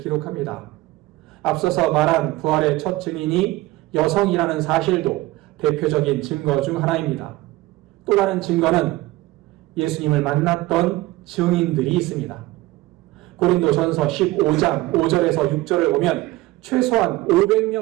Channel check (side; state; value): left; quieter; 18.5 dB